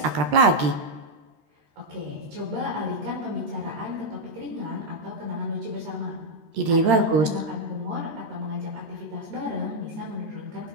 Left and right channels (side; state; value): left; late; 13 ms